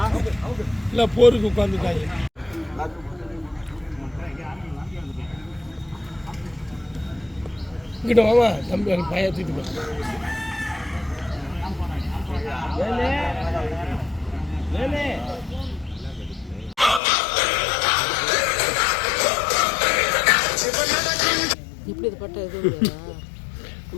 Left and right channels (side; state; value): right; drops out; at 17.0 s